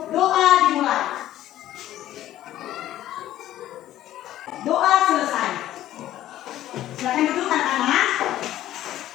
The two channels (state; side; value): quieter; right; 13.4 dB